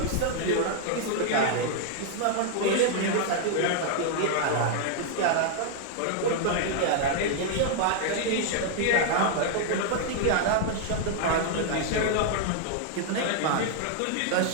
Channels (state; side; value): different; both; correlation -0.01